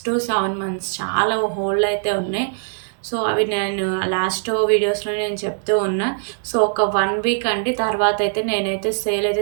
మంత్స్ చాలా హోల్డ్‌లో అయితే ఉన్నాయి. సో అవి నేను లాస్ట్ వీడియోస్‌లో నేను చెప్తూ ఉన్నా. సో ఒక 1 వీక్ అండి. తర్వాత అయితే నేనైతే సేల్ అయితే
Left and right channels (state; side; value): silent; left; digital silence